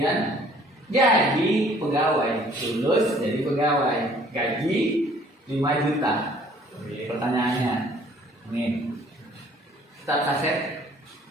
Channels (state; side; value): normal; both; correlation 0.57